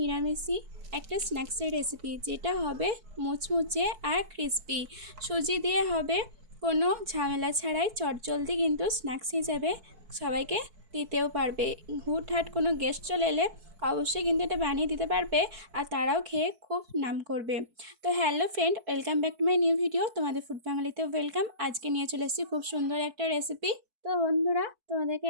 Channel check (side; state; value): left; late; 4.6 ms